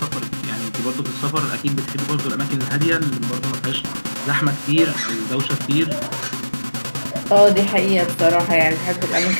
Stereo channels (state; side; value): inverted; both; correlation -1.00